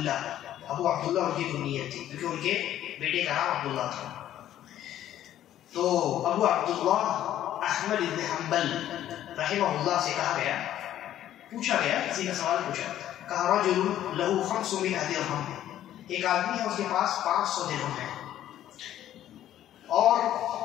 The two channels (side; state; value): right; quieter; 12.1 dB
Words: ان کی کنیت تھی، کیونکہ ان کے بیٹے کا نام عبداللہ تھا. تو ابو عبداللہ احمد بن حنبل رحمہ اللہ سے کہا گیا، پوچھا گیا، کسی کا سوال پوچھا، کہا رجل لہو 500 درہم، ایک آدمی ہے اس کے پاس 500 درہم ہے، اور